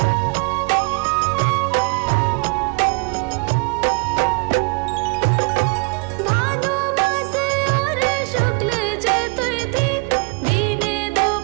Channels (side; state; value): left; quieter; 31.7 dB